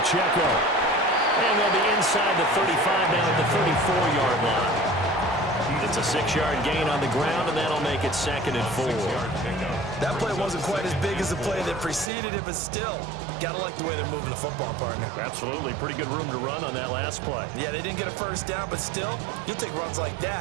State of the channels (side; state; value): left; drops out; at 12.1 s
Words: And they'll be inside the 35 now at the 34-yard line. It's a 6-yard gain on the ground, and that'll make it 2nd and 4. That play wasn't quite as big as the play that preceded it, but still, got to like the way they're moving the football, partner. Absolutely. Pretty good room to run on that last play. Yeah, they didn't get a first down, but still, you'll take runs like